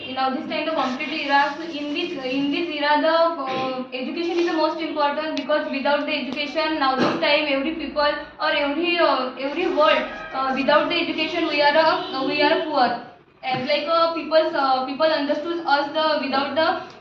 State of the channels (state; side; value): identical; both; correlation 1.00